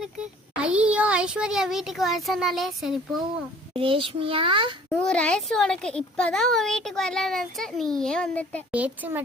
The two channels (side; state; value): both; normal; correlation 0.52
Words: இருக்கு. ஐயோ ஐஸ்வர்யா வீட்டுக்கு வர சொன்னாலே சரி போவோம். ரேஷ்மியா 100 வயசு உனக்கு, இப்பதான் உன் வீட்டுக்கு வரலான்னு நினைச்ச, நீயே வந்துட்ட. பேச்சு